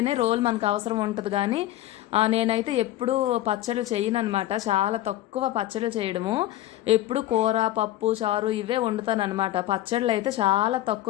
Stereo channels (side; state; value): right; quieter; 14.4 dB